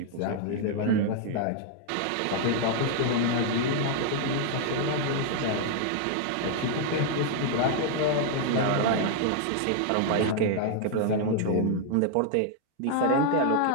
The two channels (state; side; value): different; both; correlation 0.00